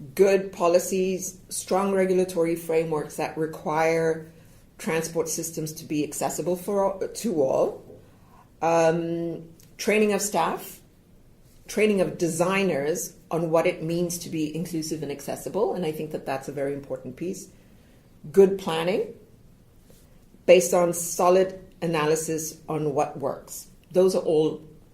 good policies, strong regulatory frameworks that require transport systems to be accessible to all, training of staff, training of designers on what it means to be inclusive and accessible, and I think that that's a very important piece. Good planning, based on solid analysis on what works. Those are all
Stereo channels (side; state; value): both; identical; correlation 1.00